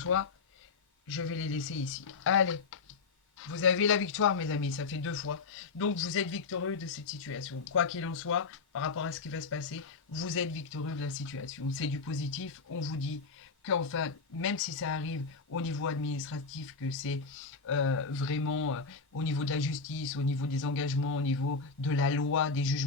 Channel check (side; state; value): right; quieter; 4.7 dB